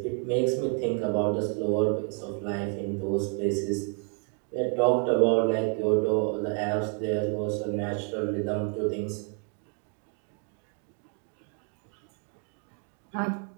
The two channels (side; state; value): left; quieter; 39.5 dB